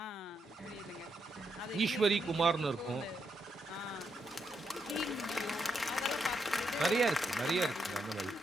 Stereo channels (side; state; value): both; normal; correlation 0.80